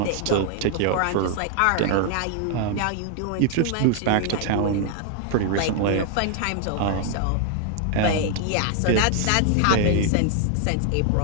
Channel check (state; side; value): different; both; correlation 0.00